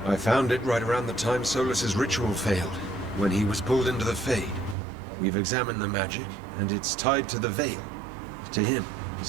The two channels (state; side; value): drops out; left; at 4.8 s